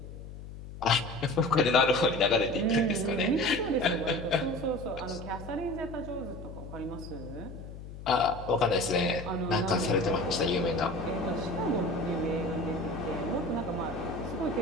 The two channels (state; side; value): noise; left; hum, 12 dB below the sound